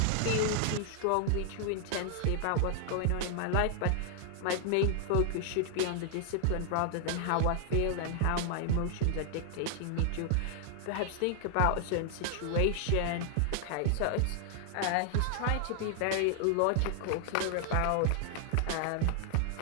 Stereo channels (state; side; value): different; both; correlation 0.00